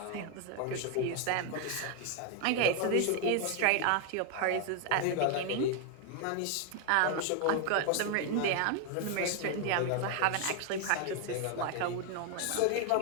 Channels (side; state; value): both; different; correlation 0.01